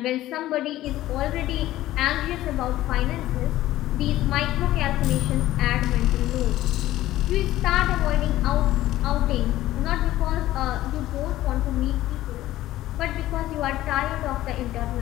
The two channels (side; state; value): right; quieter; 15.0 dB